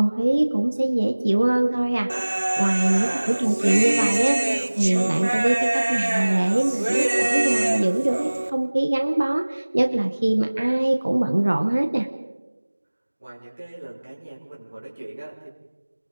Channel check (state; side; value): inverted; both; correlation -1.00